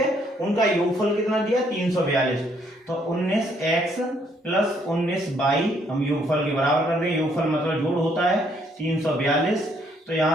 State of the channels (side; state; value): both; normal; correlation 0.69